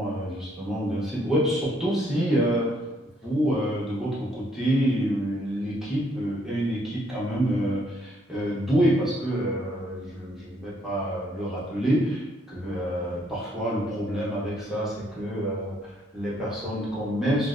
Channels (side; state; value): both; normal; correlation 0.69